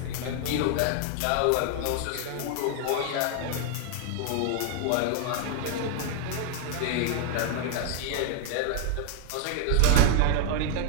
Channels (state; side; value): different; both; correlation 0.00